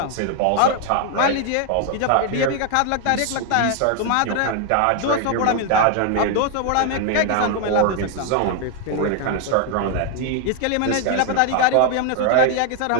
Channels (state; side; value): different; both; correlation 0.00